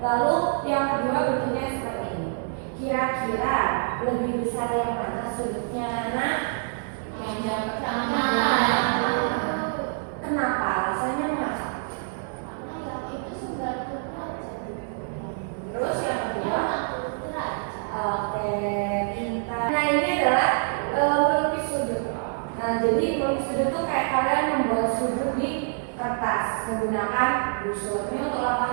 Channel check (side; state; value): left; silent; 61 dB below the other